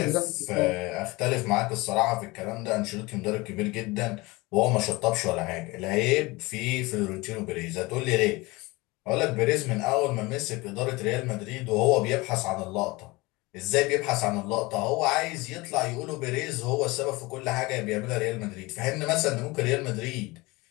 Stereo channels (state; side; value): quieter; right; 22.9 dB